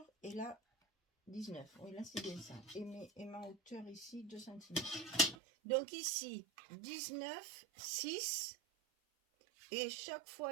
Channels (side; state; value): left; drops out; at 5.4 s